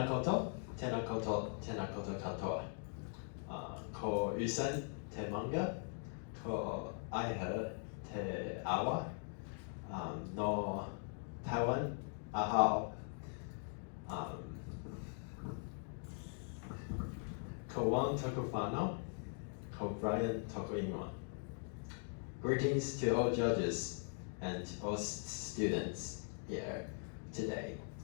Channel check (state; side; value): silent; right; 50 dB below the other